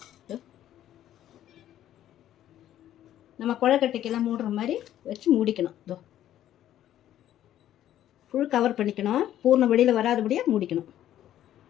நம்ம குழக்கட்டைக்கெல்லாம் மூடுற மாதிரி வச்சு மூடிக்கணும். இதோ ஃபுல் கவர் பண்ணிக்கணும். பூர்ணம் வெளியில் வராதபடியாக மூடிக்கணும்.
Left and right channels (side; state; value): right; quieter; 12.0 dB